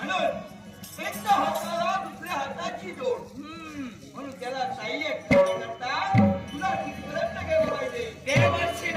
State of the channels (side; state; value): both; identical; correlation 1.00